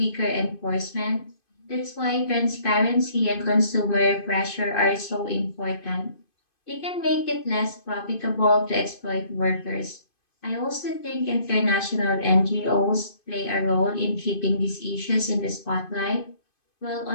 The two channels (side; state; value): right; late; 2.5 ms